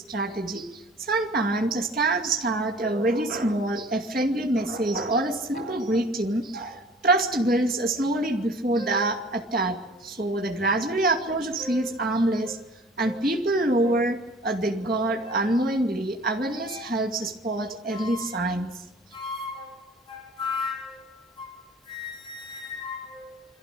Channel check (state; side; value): normal; both; correlation 0.48